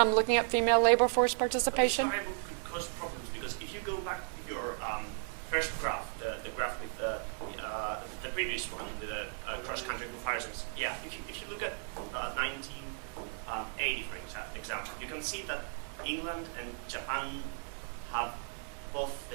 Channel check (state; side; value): silent; left; 54 dB below the other